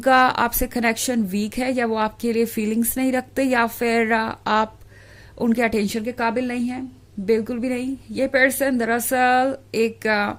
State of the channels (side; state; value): both; identical; correlation 1.00